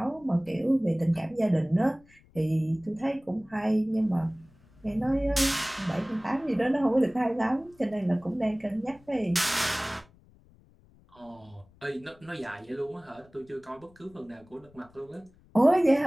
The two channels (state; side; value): noise; left; rumble, 28 dB below the sound